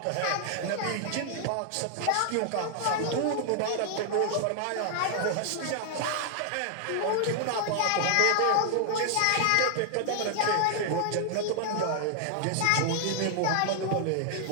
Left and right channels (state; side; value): different; both; correlation 0.00